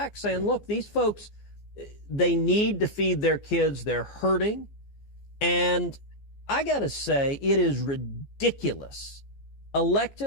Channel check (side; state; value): right; late; 15 ms